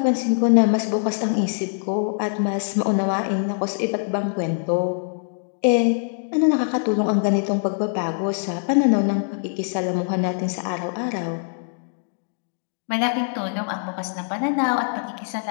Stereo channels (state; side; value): silent; right; digital silence